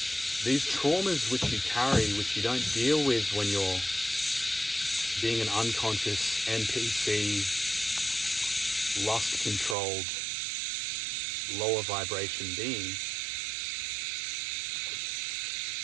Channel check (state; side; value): drops out; left; at 9.8 s